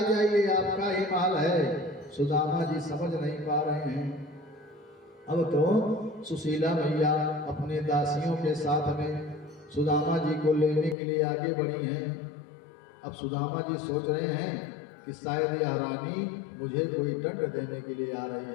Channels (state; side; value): drops out; right; at 11.0 s